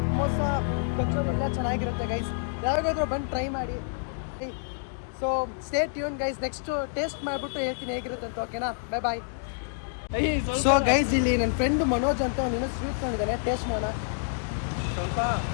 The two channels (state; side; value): silent; right; digital silence